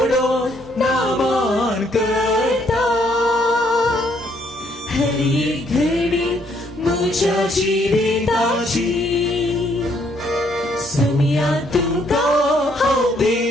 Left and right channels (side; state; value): both; normal; correlation 0.69